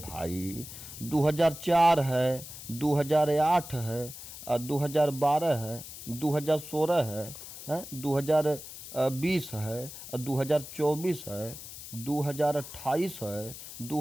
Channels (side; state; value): left; noise; hiss, 12 dB below the sound